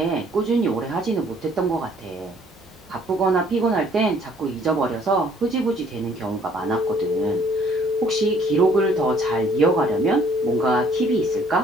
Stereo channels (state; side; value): normal; both; correlation 0.61